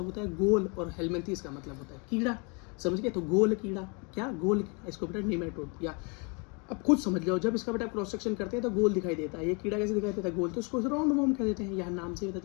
होता है गोल, और हेलमिन्थीज का मतलब होता है कीड़ा। समझ गए? तो गोल कीड़ा, क्या? गोल कीड़ा, इसको बेटा निमेटोड। या अब खुद समझ लो, जब इसका बेटा क्रॉस सेक्शन करते हैं तो गोल दिखाई देता है। ये कीड़ा कैसे दिखाई देता है? गोल। तो इसको राउंड वॉर्म कह देते हैं, यहाँ नाम से पता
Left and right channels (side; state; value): right; quieter; 33.1 dB